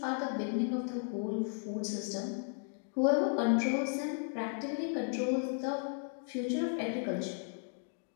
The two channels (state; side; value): silent; right; 54 dB below the other